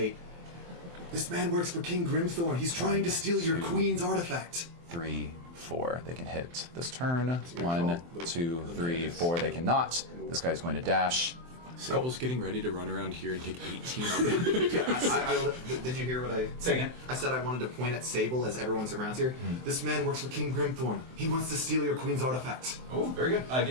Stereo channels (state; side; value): late; left; 23 ms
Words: "This man works for King Grimthorn. He's trying to steal your 2, queen's artifact." 3, 4. They can hit this turn. 1, 2, 3, 4. They cannot. This guy's going to dash. Sable's getting ready to run around here and take 18 up. Did you hear what I say again. I said I wanted to point at Sable as everyone's around here. This man works for King Grimthorn. He wants to steal your queen's artifact. Oh, very good.